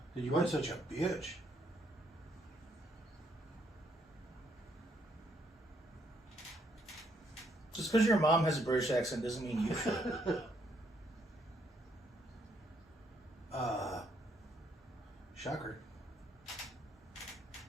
You weren't such a bitch. Just because your mom has a British accent doesn't mean you should. Shocker.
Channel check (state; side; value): normal; both; correlation 0.72